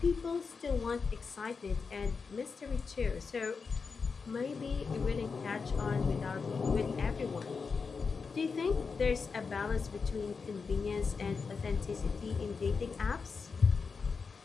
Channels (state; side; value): quieter; right; 5.1 dB